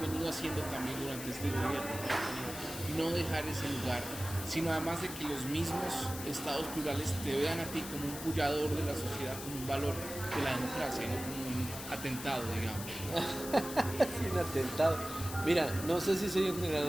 venido haciendo también durante este gobierno, y no dejar ese lugar, sino además de que los mismos estados plurales te vean a ti como un pullador de la sociedad, como un valor de la democracia, no como un atentado, digamos. Sí, un atentado. Mira, no sé si soy un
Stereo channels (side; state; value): left; noise; hiss, 9 dB below the sound